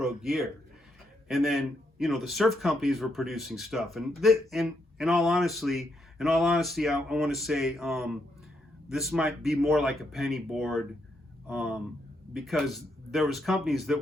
gear. And then, the surf companies were producing stuff. And in all honesty, I want to say this might be more like a penny board, because there was companies that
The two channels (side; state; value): both; normal; correlation 0.79